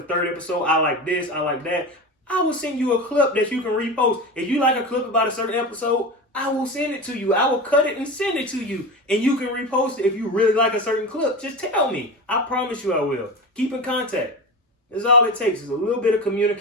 third episode. I like this, I like that. I will send you a clip that you can repost. If you like a clip about a certain episode, I will send it to you. I will cut it and send it to you. And you can repost it if you really like a certain clip. Just tell me. I promise you I will. Keep in contact. That's all it takes is a little bit of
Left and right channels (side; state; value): both; normal; correlation 0.26